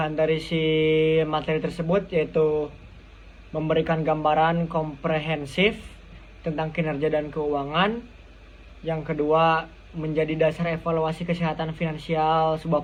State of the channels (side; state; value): both; identical; correlation 1.00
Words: dari si materi tersebut yaitu memberikan gambaran komprehensif tentang kinerja dan keuangan. Yang kedua, menjadi dasar evaluasi kesehatan finansial sebuah